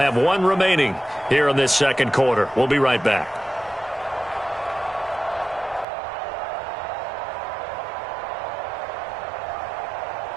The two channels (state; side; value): drops out; left; at 5.9 s